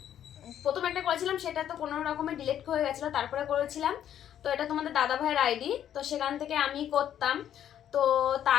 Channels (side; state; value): right; quieter; 10.3 dB